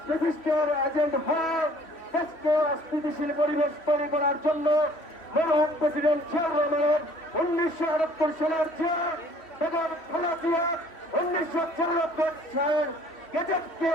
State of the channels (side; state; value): right; late; 3.1 ms